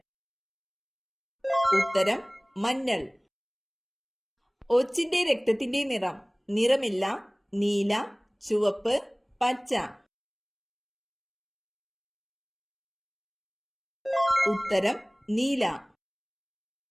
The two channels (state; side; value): identical; both; correlation 1.00